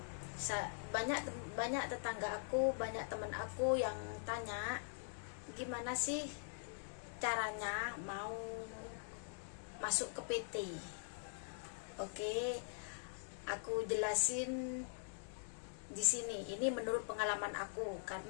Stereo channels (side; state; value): right; silent; digital silence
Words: Banyak tetangga aku, banyak teman aku yang tanya gimana sih caranya mau masuk ke PT. Oke, aku jelasin di sini. Ini menurut pengalaman aku,